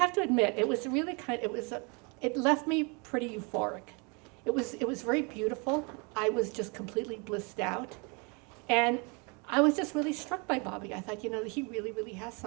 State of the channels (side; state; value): left; quieter; 32.0 dB